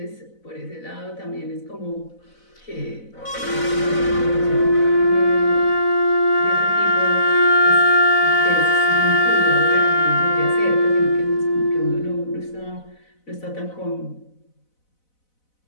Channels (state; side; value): late; right; 4.0 ms